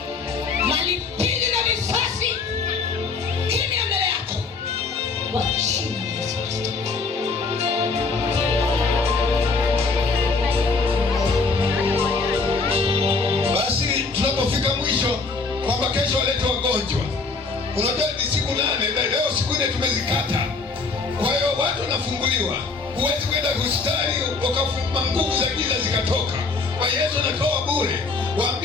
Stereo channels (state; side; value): quieter; right; 4.2 dB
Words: Malipili na visasi kimya mbele yako kwa jina la Yesu Kristo. Basi tunapofika mwisho kwamba kesho walete wagonjwa, unajua ni siku 8 na leo siku 4 tumezikata. Kwa hiyo watu wanafunguliwa. Huwezi kwenda hospitali ukafuma nguvu za giza zikatoka. Kwa Yesu anatoa bure.